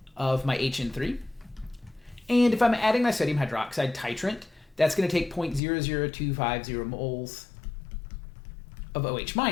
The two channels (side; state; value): right; drops out; at 5.6 s